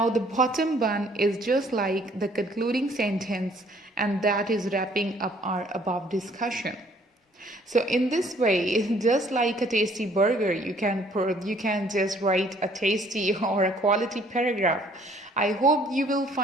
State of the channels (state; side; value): normal; both; correlation 0.60